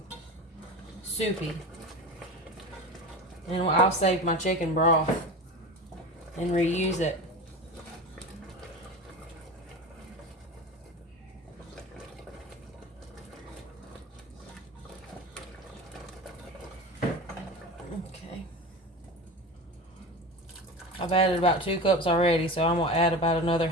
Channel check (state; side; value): normal; both; correlation 0.30